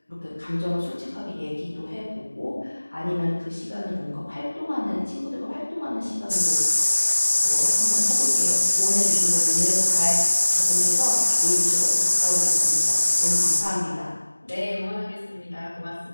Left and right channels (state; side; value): inverted; both; correlation -1.00